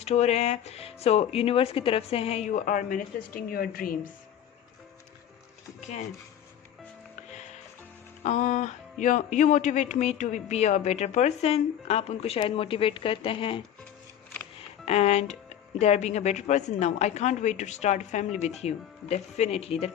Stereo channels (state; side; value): quieter; right; 10.2 dB